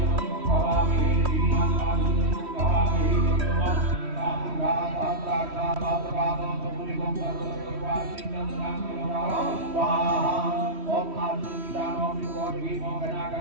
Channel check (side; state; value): left; late; 3.1 ms